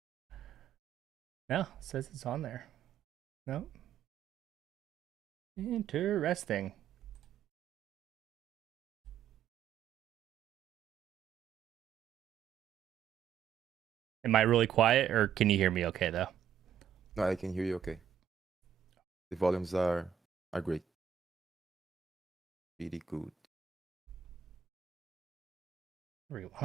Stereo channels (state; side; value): quieter; left; 8.3 dB